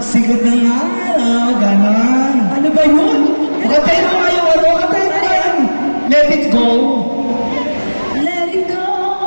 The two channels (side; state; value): both; inverted; correlation -1.00